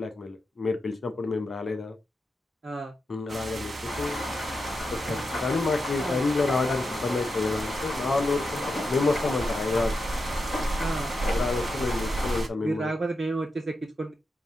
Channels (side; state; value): both; normal; correlation 0.87